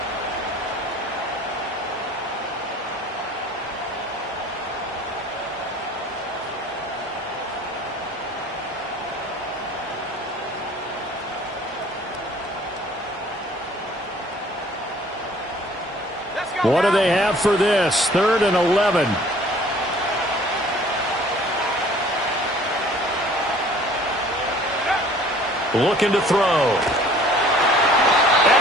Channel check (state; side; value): normal; both; correlation 0.53